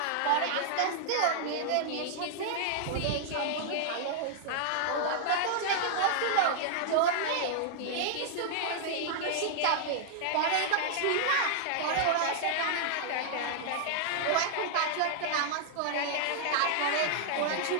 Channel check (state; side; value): different; both; correlation -0.01